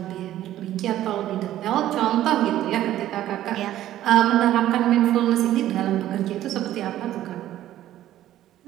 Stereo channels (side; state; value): left; quieter; 13.1 dB